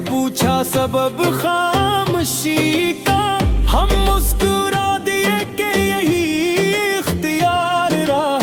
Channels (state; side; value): identical; both; correlation 1.00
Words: پوچھا سبب خاموشی کا، ہم مسکرا دیے کہ یہی اختیار